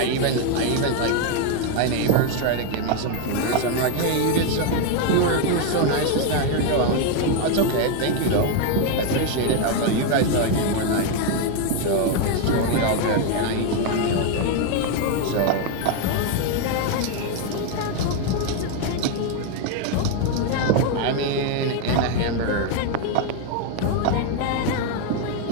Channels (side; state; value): both; different; correlation 0.01